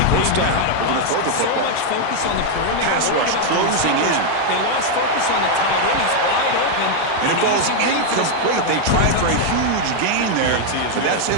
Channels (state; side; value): different; both; correlation 0.00